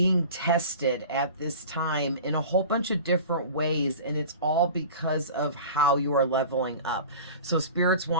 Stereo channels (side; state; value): both; inverted; correlation -0.38